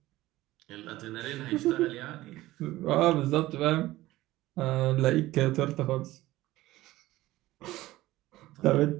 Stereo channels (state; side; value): quieter; left; 17.0 dB